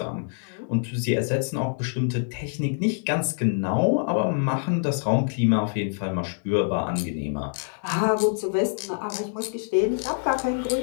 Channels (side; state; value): right; silent; digital silence